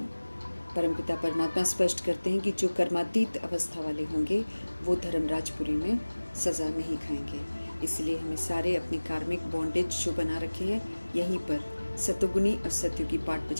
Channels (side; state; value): both; inverted; correlation -1.00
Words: परमपिता परमात्मा स्पष्ट करते हैं कि जो कर्मातीत अवस्था वाले होंगे वो धर्मराजपुरी में सज़ा नहीं खाएंगे। इसलिए हमें सारे अपने कार्मिक बॉन्डेज जो बना रखे हैं यहीं पर सतोगुनी और सत्युगी पाठ